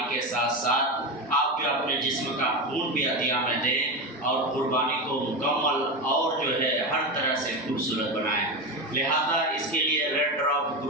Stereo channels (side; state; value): both; normal; correlation 0.18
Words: के साथ साथ आप जो अपने जिस्म का खून भी अतिया में दें और कुर्बानी को मुकम्मल और जो है हर तरह से खूबसूरत बनाएं। लिहाजा इसके लिए रेड ड्रॉप